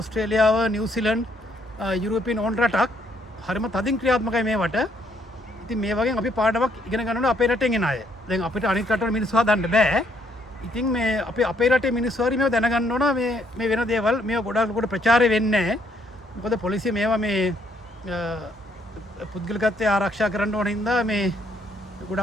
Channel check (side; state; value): both; normal; correlation 0.69